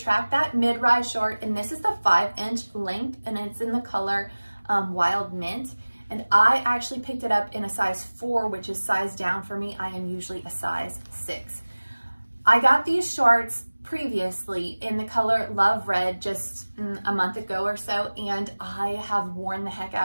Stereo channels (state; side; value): inverted; both; correlation -1.00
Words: That Mid-Rise short, and this is the 5-inch length, and it's in the color Wild Mint. And I actually picked it up in a size 4, which is size down for me. I am usually a size 6. I got these shorts previously in the color Love Red just a month ago or so, and I have worn the heck